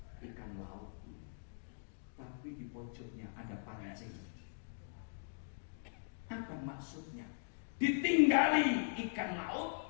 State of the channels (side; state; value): right; silent; digital silence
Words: ikan laut, tapi di pojoknya ada pancing. Apa maksudnya? Ditinggali ikan